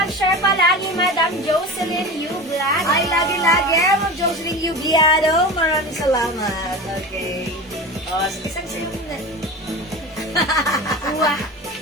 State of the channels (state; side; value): normal; both; correlation 0.30